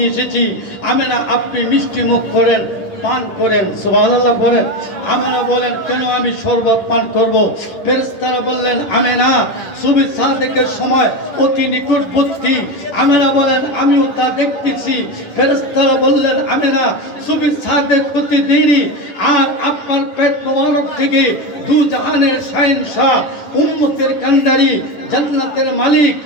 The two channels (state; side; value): late; right; 10 ms